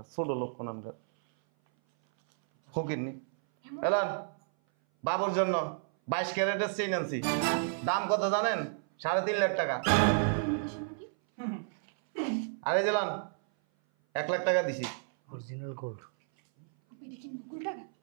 ছোট লোক কোন আমরা ফকিরনি এলান বাবুর জন্য 22 ক্যারেটের চেইন আনছি দাম কত জানেন 3.5 লাখ টাকা আরে জেলান 1 লাখ টাকা দিছি অরিজিনাল গোল্ড আপনি দেখি নকল টাকা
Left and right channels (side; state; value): left; silent; 57 dB below the other